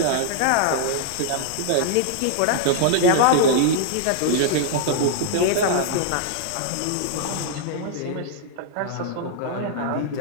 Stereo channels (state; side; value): different; both; correlation -0.01